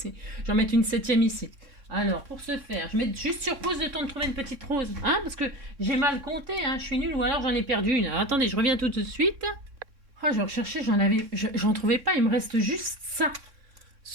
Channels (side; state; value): left; late; 3.6 ms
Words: J'en mette une septième ici. Alors, pour ce faire, je mets juste sur pause le temps de trouver une petite rose. Hein, parce que j'ai mal compté, hein, je suis nulle ou alors j'en ai perdu une. Alors, attendez, je reviens tout de suite. Oh, je recherchais, j'en trouvais pas. Il me reste juste ça.